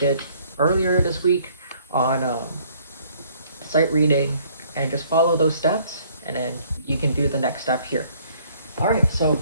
earlier this week on sight reading and just follow those steps, and then you can do the next step here. Alright, so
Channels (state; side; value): inverted; both; correlation -0.62